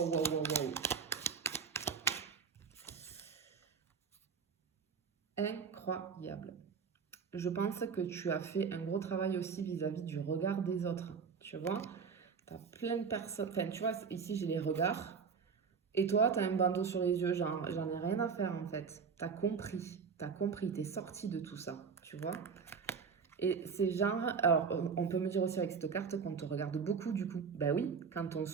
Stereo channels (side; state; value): left; quieter; 5.9 dB